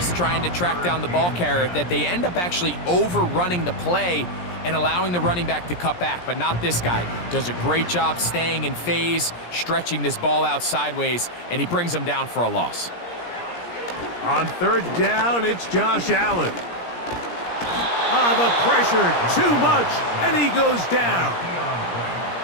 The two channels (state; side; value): late; right; 17 ms